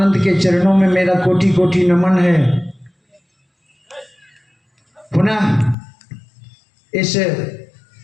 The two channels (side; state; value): right; drops out; at 5.8 s